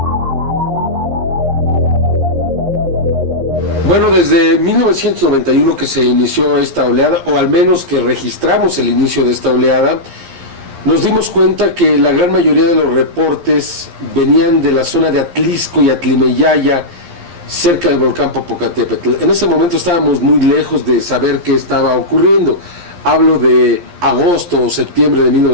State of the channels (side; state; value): left; late; 11 ms